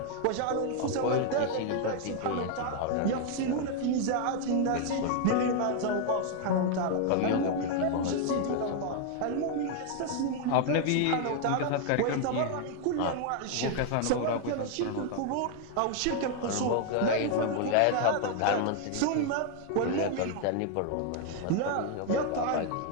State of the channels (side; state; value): both; different; correlation 0.00